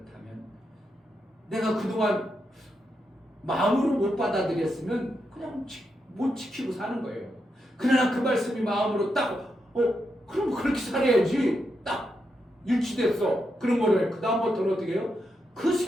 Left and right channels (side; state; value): both; normal; correlation 0.84